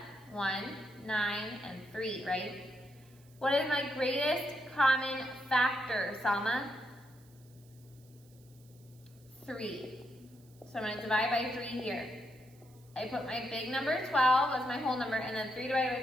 1, 9, and 3, right? What is my greatest common factor, Salma? 3. So I'm going to divide by 3 here. I put my big number 12 as my whole number, and then 3 divided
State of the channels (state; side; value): noise; right; hiss, 28 dB below the sound